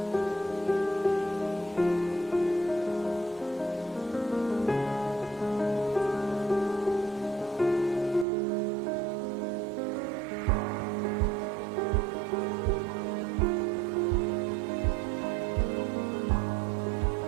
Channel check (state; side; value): drops out; left; at 8.2 s